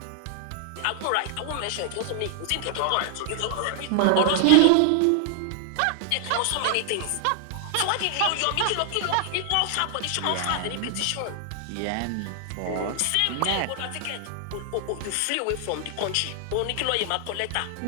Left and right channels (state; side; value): different; both; correlation 0.00